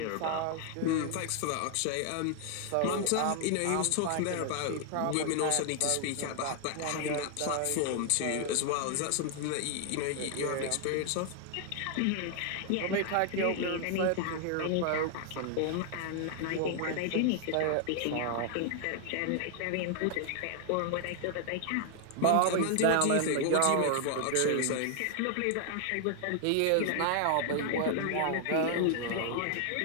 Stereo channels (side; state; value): both; different; correlation 0.00